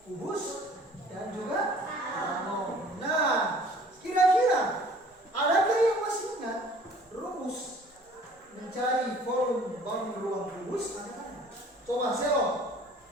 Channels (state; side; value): normal; both; correlation 0.52